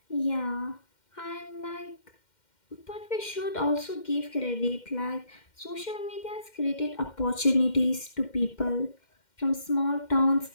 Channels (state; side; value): late; right; 2.1 ms